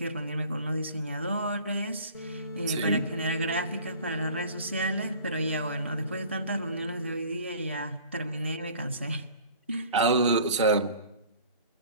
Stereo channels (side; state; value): both; inverted; correlation -0.47